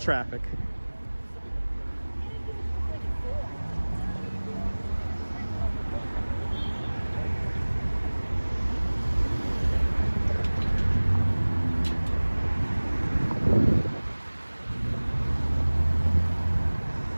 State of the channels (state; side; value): inverted; both; correlation -1.00